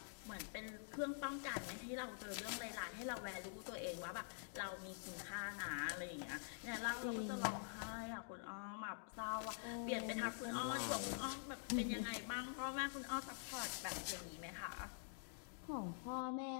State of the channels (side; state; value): right; silent; digital silence